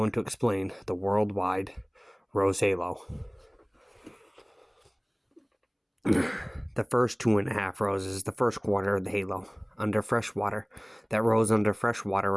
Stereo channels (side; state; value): both; identical; correlation 1.00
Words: to explain the worldwide Rose Halo. The first 2.5 roses, the first quarter of the halo, under fresh water. That rose under fresh water